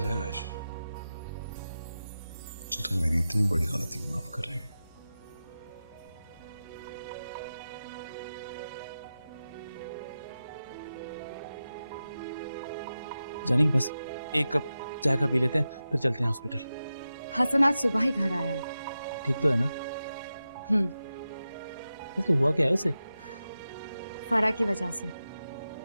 है आयशा, जो तुम मेरी इतनी बड़ी गलती माफ कर रही हो। जानी बस एक कप चाय का पी लेते हैं, फिर चलते हैं हॉस्पिटल। हसन आज सुबह ही घर आया है। ठीक तो है ना? वैसे हुआ क्या है उसे? फरा की वजह से।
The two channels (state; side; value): inverted; both; correlation -0.93